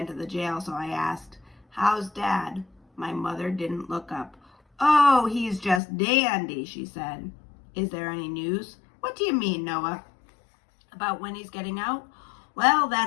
to the jail, so I asked, How's Dad? My mother didn't look up. Oh, he's just dandy, she said. Is there any news? What do you mean, Noah? About when he's getting out? Well,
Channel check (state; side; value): drops out; right; at 5.8 s